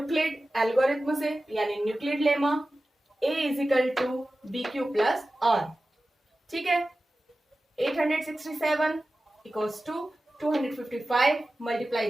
एल्गोरिथम से, यानी Euclid lemma A is equal to B Q plus r. ठीक है, 867 इक्वल्स टू 255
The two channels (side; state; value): both; normal; correlation 0.95